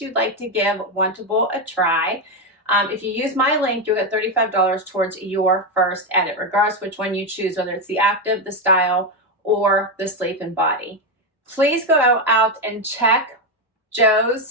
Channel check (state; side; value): normal; both; correlation 0.08